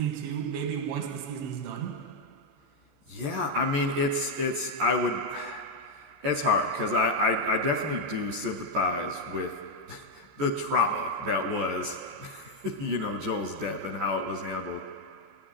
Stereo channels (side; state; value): left; late; 14 ms